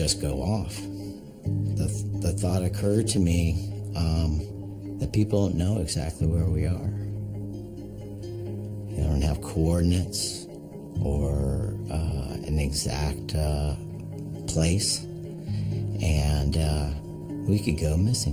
go off. The thought occurred to me that people don't know exactly where we are. They don't have coordinates or an exact place. And we could go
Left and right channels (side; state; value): both; identical; correlation 1.00